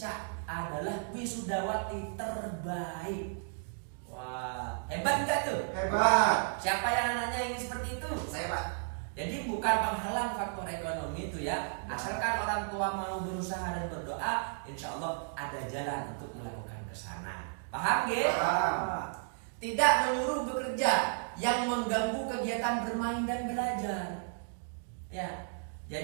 adalah wisudawati terbaik. Wah, hebat gak tuh? Hebat. Siapa yang anaknya ingin seperti itu? Saya, Pak. Jadi bukan penghalang faktor ekonomi itu ya. Asalkan orang tua mau berusaha dan berdoa, insya Allah ada jalan untuk melakukan ke sana. Paham gak? Paham. Tidak menyuruh bekerja yang mengganggu kegiatan bermain dan belajar. Ya,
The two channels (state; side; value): silent; left; digital silence